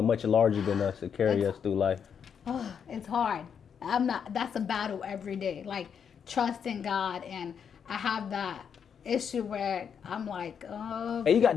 much larger than us to carry us through life. Oh, it's hard. That's a battle every day. Like, trusting God, and I have that issue where I'm like, oh. And you got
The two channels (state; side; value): quieter; right; 7.4 dB